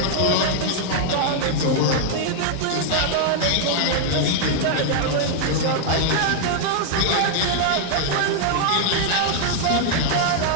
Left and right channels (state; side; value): different; both; correlation -0.01